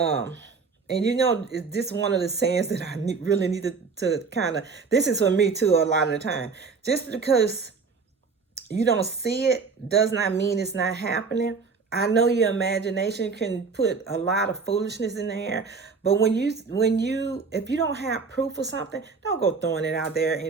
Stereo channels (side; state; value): left; quieter; 4.9 dB